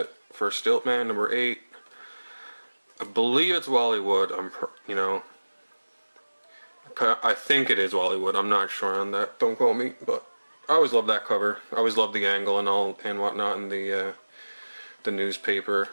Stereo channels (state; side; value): inverted; both; correlation -1.00